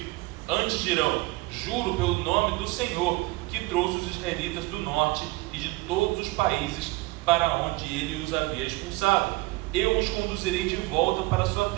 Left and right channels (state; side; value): quieter; left; 22.0 dB